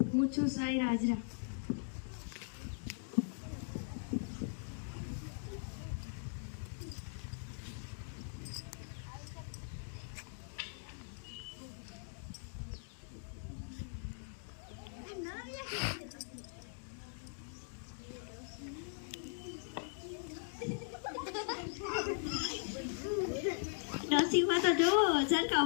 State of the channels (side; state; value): right; silent; digital silence